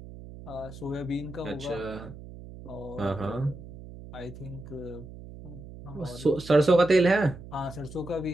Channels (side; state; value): right; noise; hum, 15 dB below the sound